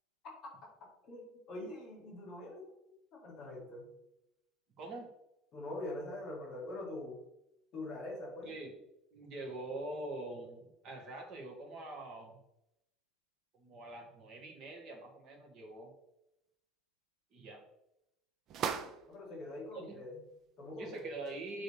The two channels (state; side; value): normal; both; correlation 0.50